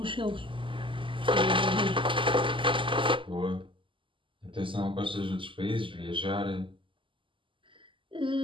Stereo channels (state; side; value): late; left; 0.25 ms